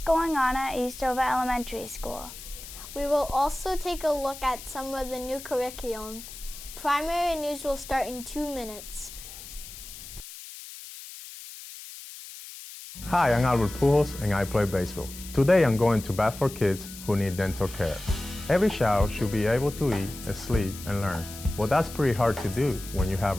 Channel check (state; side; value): noise; left; hiss, 14 dB below the sound